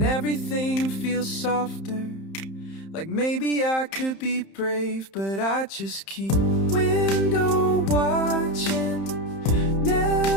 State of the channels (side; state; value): right; late; 31 ms